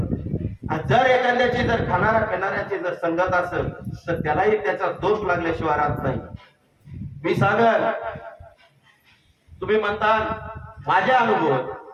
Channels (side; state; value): both; identical; correlation 1.00